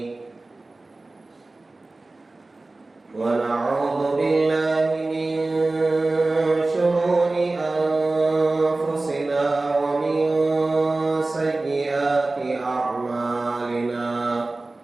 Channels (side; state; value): left; quieter; 3.2 dB